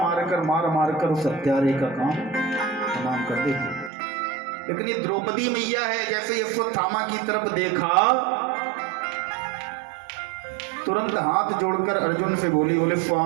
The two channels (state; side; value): drops out; left; at 3.9 s